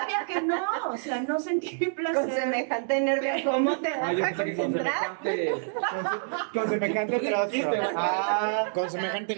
que no, o sea, no sentir placer. Con semejante nervio, ¿cómo te vas Ah, yo a pensé que con concentrar? semejante. Con semejante trozo. Ah, Con semejante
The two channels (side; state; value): left; silent; digital silence